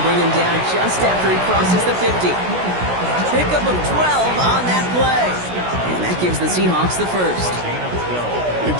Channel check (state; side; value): late; left; 16 ms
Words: to bring him down just after he crosses the 50. Pickup of 12 on that play. And that gives the Seahawks the first. And